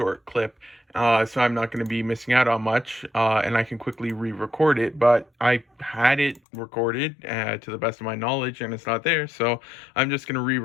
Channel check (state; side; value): drops out; right; at 6.4 s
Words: clip, so I'm not going to be missing out on much, and I can quickly re-record it. But I had it recorded to the best of my knowledge, and it's not there, so I'm just going to